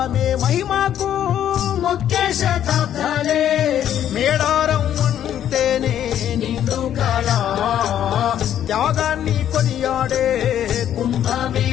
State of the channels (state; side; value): quieter; right; 10.6 dB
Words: మహిమకు ముఖ్య శతాబ్దాలే మేడారం అంటేనే నిండు కాల త్యాగాన్ని కొనియాడే